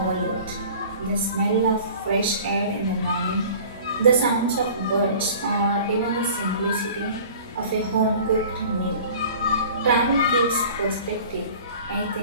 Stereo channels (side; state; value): both; inverted; correlation -0.44